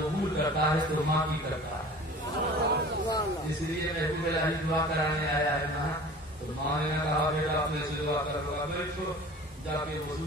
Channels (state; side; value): normal; both; correlation 0.42